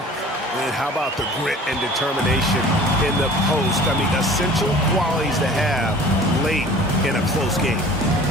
And how about the grit and determination in the post? I mean, essential qualities to have late in a close game.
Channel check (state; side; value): normal; both; correlation 0.46